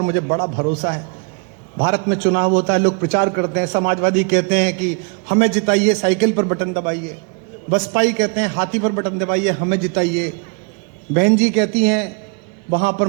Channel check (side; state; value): left; quieter; 34.8 dB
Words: मुझे बड़ा भरोसा है। भारत में चुनाव होता है, लोग प्रचार करते हैं। समाजवादी कहते हैं कि हमें जिताइए, साइकिल पर बटन दबाइए। बसपाई कहते हैं हाथी पर बटन दबाइए, हमें जिताइए। बहन जी कहती हैं वहां पर